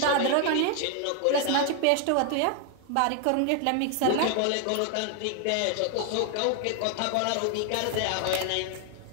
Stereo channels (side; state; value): both; different; correlation 0.00